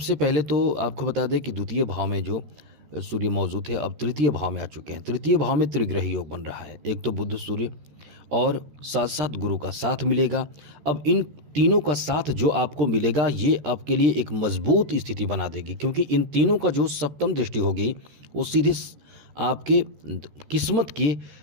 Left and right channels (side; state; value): left; late; 13 ms